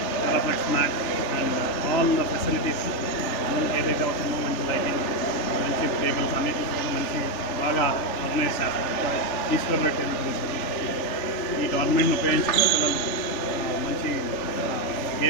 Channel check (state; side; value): late; right; 3.5 ms